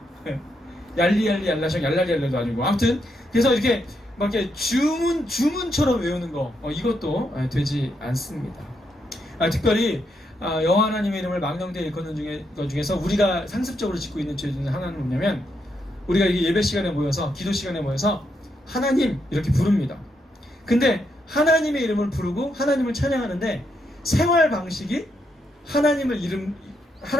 얄리 얄리 알라샹 얄라리 얄라도 아니고, 아무튼 그래서 이렇게 막 이렇게 주문처럼 외우는 거, 이것도 되지 않습니다. 특별히 여호와 하나님의 이름을 망령되이 일컫는 것 중에서 우리가 상습적으로 짓고 있는 죄 중에 하나는 뭐냐면, 우리가 이게 예배 시간에 모여서, 기도 시간에 모여서 하나님 이렇게 부릅니다. 근데 하나님의 이름을 부르고 하나님을 찬양하는데 생활 방식이 하나님을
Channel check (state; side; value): normal; both; correlation 0.80